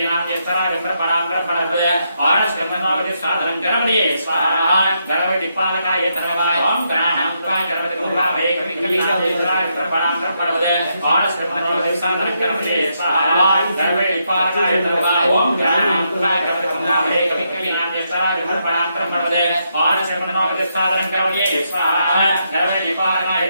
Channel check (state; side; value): inverted; both; correlation -0.79